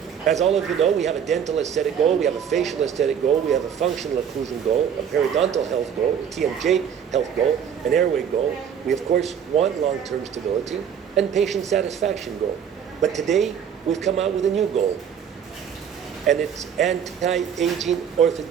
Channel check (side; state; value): left; quieter; 8.1 dB